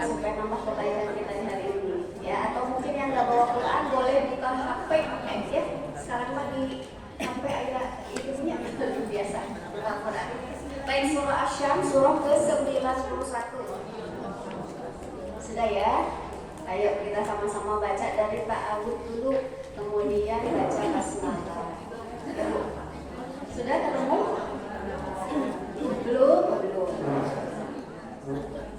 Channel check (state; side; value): identical; both; correlation 1.00